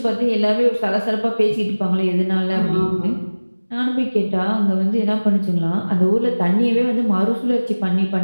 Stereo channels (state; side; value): inverted; both; correlation -1.00